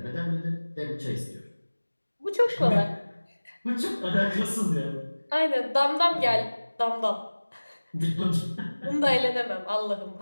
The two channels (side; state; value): both; inverted; correlation -1.00